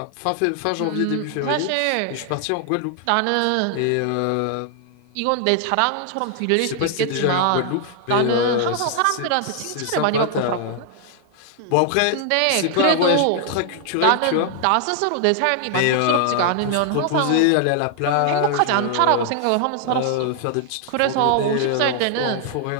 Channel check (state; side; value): different; both; correlation 0.00